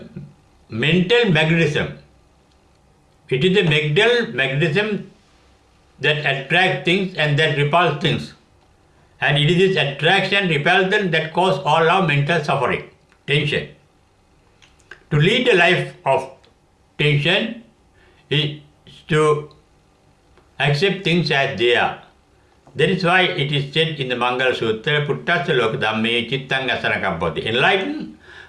mental magnetism. It is the mental magnetism that attracts things and that repels things. And it is this attraction, repulsion that causes all our mental suffering, tension. To lead a life of tension is to accept things as they are. That is why it is said in the Mangala Sutra, Puttasya Lokadhamme Chittang Asanakam Poti. Enlightened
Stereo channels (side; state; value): both; identical; correlation 1.00